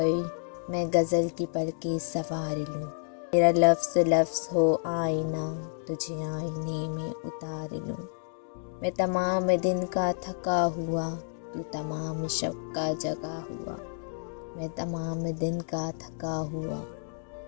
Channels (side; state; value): right; silent; digital silence